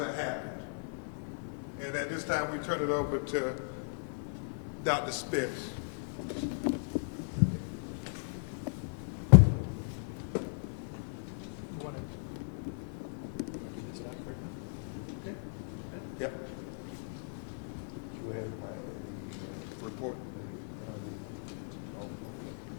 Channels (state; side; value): silent; right; digital silence